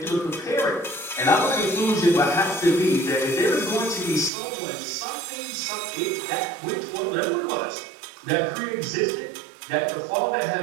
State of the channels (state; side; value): drops out; left; at 4.3 s